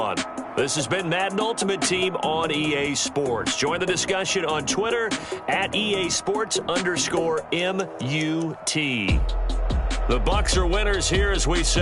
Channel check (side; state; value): both; identical; correlation 1.00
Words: This has been Madden Ultimate Team on EA Sports. Join the discussion on Twitter at EA Sports_MUT. The Bucs are winners here as we